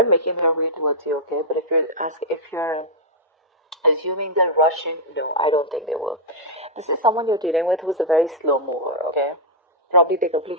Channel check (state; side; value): normal; both; correlation -0.06